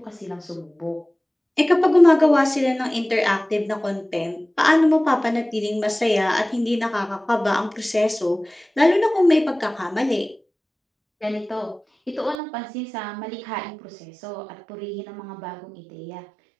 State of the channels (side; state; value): left; drops out; at 12.4 s